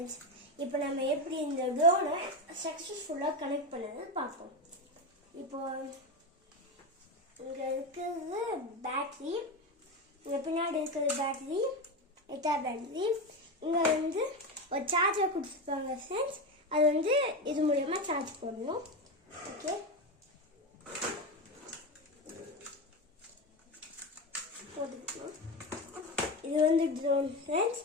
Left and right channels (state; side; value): normal; both; correlation 0.17